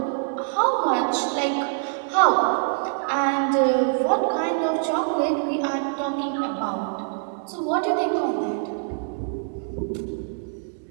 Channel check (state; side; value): silent; left; digital silence